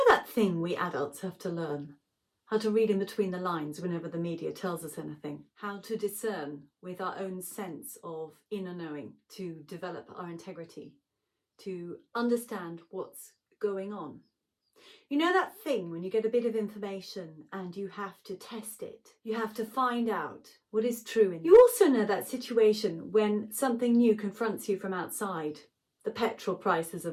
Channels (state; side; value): identical; both; correlation 1.00